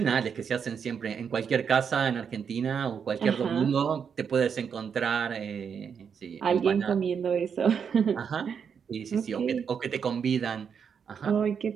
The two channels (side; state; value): left; quieter; 6.9 dB